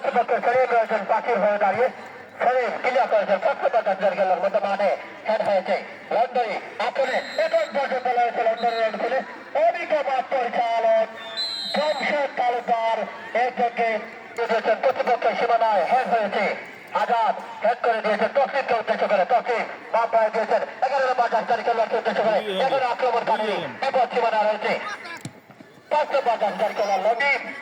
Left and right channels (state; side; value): identical; both; correlation 1.00